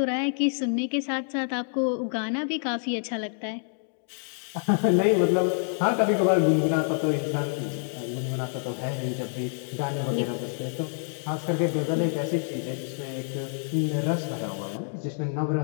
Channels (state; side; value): silent; right; 60 dB below the other